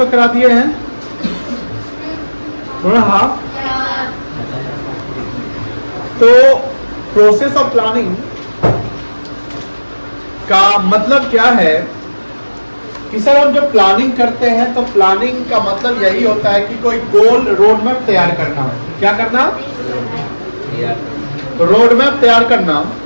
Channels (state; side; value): inverted; both; correlation -1.00